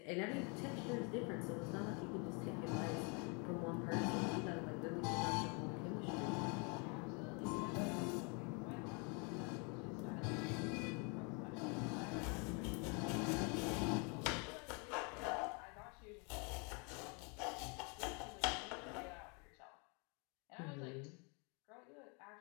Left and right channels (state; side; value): quieter; right; 33.8 dB